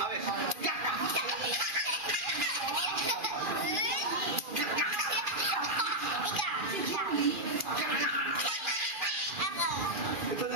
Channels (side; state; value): left; late; 2.4 ms